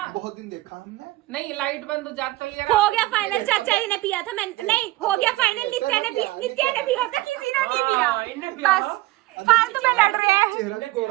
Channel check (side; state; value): left; quieter; 18.6 dB